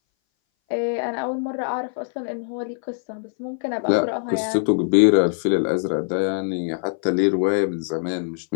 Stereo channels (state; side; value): silent; right; 60 dB below the other